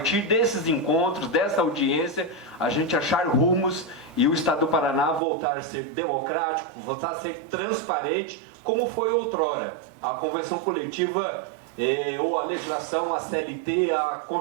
desses encontros, dessa audiência, a gente achar rumos e o Estado do Paraná voltar a ser democrático, voltar a ser transparente, como foi outrora. A convenção coletiva ou a legislação, a CLT, a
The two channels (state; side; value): drops out; left; at 5.2 s